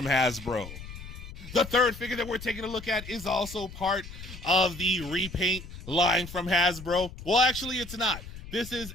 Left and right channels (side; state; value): left; noise; rumble, 13 dB below the sound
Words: Hasbro? The third figure that we're taking a look at is also part of the repaint line from Hasbro. Well, actually, it's not. This is